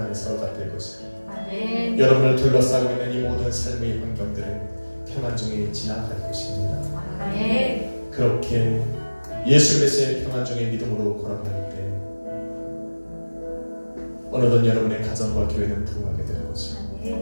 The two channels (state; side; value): inverted; both; correlation -1.00